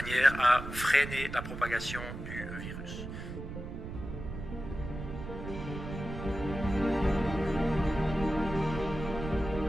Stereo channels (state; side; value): noise; right; rumble, 8 dB below the sound